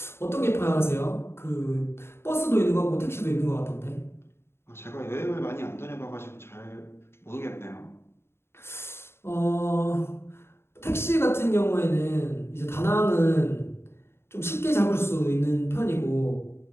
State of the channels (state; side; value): late; right; 0.12 ms